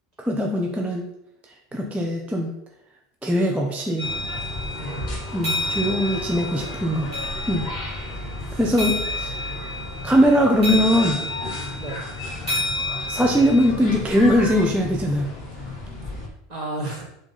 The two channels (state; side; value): normal; both; correlation 0.63